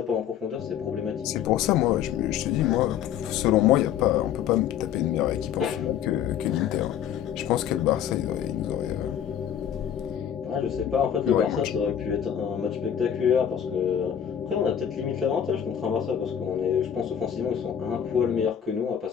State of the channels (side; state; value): right; quieter; 9.3 dB